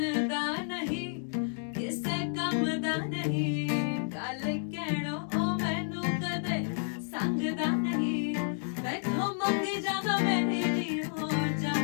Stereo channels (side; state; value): right; silent; digital silence